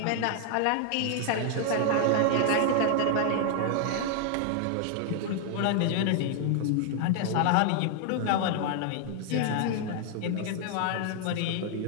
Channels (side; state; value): both; different; correlation 0.00